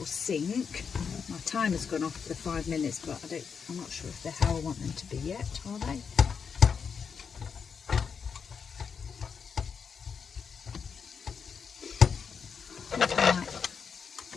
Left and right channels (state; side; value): quieter; right; 6.3 dB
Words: sink. My timer's gone off for the 5 minutes, but I'm not sure if they're how I want them to be yet, are they?